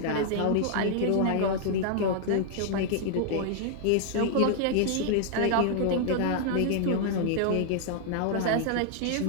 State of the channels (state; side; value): different; both; correlation 0.00